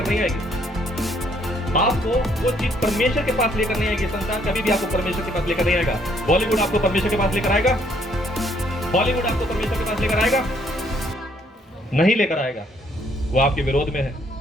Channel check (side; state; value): both; normal; correlation 0.67